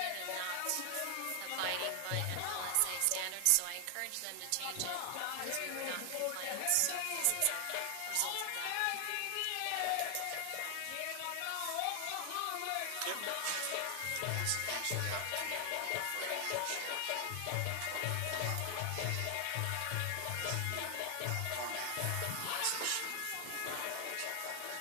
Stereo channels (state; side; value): different; both; correlation 0.00